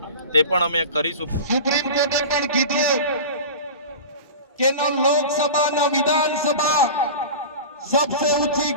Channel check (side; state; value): both; inverted; correlation -0.32